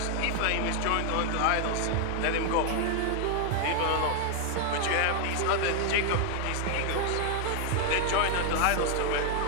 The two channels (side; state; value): both; different; correlation 0.00